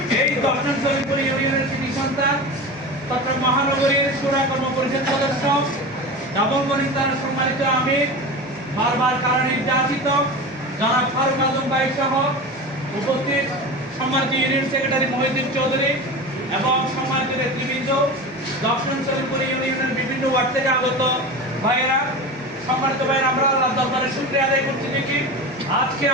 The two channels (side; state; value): both; normal; correlation 0.29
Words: এই 10 নং সলিমপুর ইউনিয়নের কৃষি সন্তান চট্টগ্রাম মহানগরীর সুরা কর্ম পরিষদ সদস্য, নবমগণিত দ্বারা সম্মানিত আমির, বারবার কারণে নির্যাতিত জনাব ফারুক আজম ভাই সহ উপস্থিত সম্মানিত ইউনিয়ন সেক্রেটারি মহিউদ্দিন চৌধুরী এবং সম্মানিত নেতৃবৃন্দ, 10 নং সলিমপুর ইউনিয়নের বিভিন্ন ওয়ার্ড থেকে আগত ভাইয়েরা, সম্মানিত ভাইয়েরা, আমরা আল্লাহর দরবারে শুকরিয়া আদায় করছি দেখি আজকে